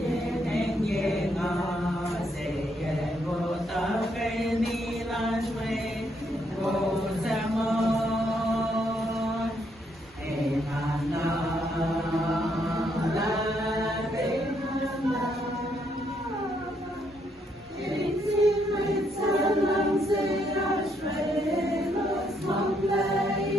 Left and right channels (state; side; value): normal; both; correlation 0.74